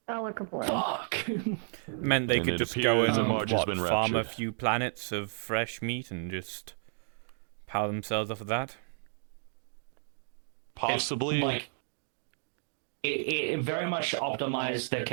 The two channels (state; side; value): silent; left; digital silence